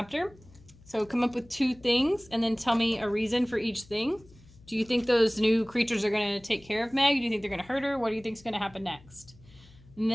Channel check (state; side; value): noise; left; hum, 25 dB below the sound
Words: So come up with 2 things, and then tell me a reason for each thing. Do you think those new creatures are going to take care of Meg? Do you think they're going to hurt her? What do you think is going to happen next? And